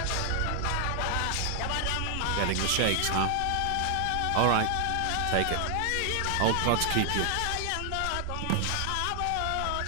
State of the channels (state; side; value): different; both; correlation 0.00